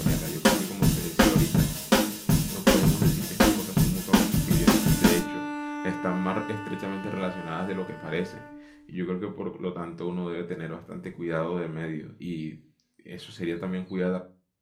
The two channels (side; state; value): both; identical; correlation 1.00